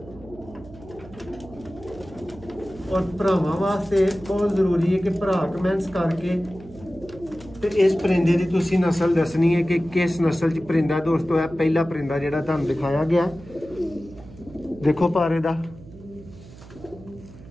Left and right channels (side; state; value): right; noise; hum, 19 dB below the sound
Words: और भरावां वास्ते बहुत जरूरी है कि भरा कमेंट्स करके तो इस परिंदे की तुसीं नस्ल दसनी है कि किस नस्ल च परिंदा दोस्तों है। पहला परिंदा जिहड़ा तुहानूं दिखाया गया, देखो पारे दा